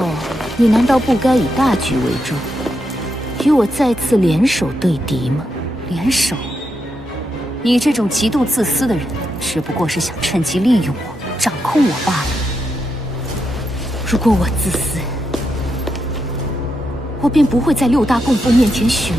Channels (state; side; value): normal; both; correlation 0.83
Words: 你难道不该以大局为重，与我再次联手对敌吗？联手？你这种极度自私的人，只不过是想趁机利用我，掌控我罢了。如果我自私，我便不会在六大供奉面前许